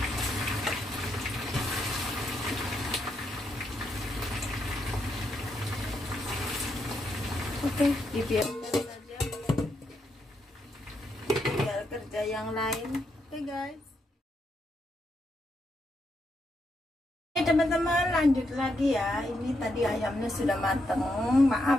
Oke, dibiarkan saja. Tinggal kerja yang lain. Oke guys. Teman-teman, lanjut lagi ya. Ini tadi ayamnya sudah mateng.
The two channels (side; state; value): both; normal; correlation 0.80